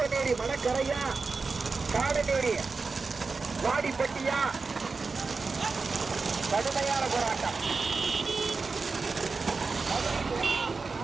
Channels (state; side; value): quieter; left; 4.3 dB